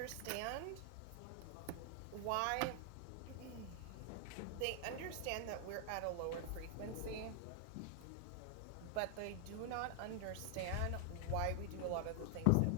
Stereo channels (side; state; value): both; different; correlation 0.00